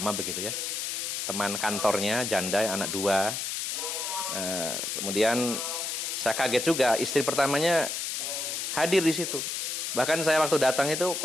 begitu ya. Teman kantornya, janda, anak 2. Kemudian saya kaget juga, istri pertamanya hadir di situ. Bahkan saya waktu datang itu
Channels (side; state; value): left; noise; hiss, 3 dB below the sound